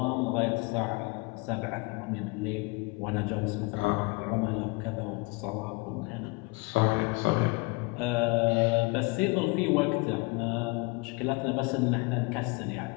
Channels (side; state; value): right; quieter; 27.6 dB